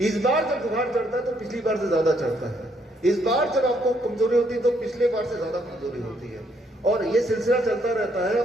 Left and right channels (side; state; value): both; normal; correlation 0.71